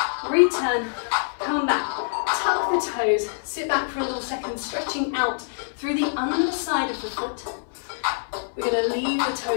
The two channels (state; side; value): silent; right; 62 dB below the other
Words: return, come back. Tuck the toes. Sit back for a little second, stretching out through the underside of the foot. We're going to leave the